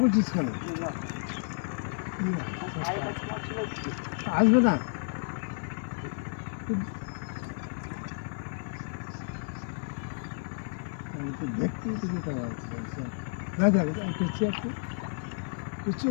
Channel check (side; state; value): right; silent; 57 dB below the other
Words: বলছিস কেন আসবে না দেখতেই তো যেতে পারছি না দেখ পেছিয়ে একটু পেছিয়ে